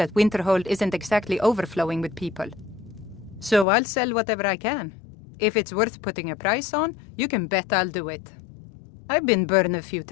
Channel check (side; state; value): right; drops out; at 3.7 s